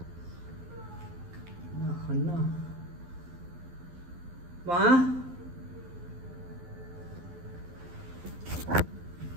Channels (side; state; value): left; late; 12 ms